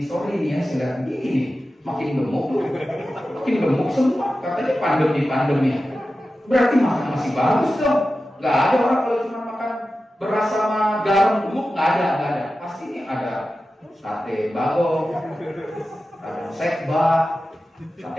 sorry nih ya, saya lihat begini nih, makin gemuk semua. Katanya pandemi ya. Berarti makan masih bagus dong. Nggak ada orang kalau cuma makan beras sama garam gemuk, nggak ada. Pasti ini ada sate bagong, ada sekba,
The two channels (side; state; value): both; normal; correlation 0.93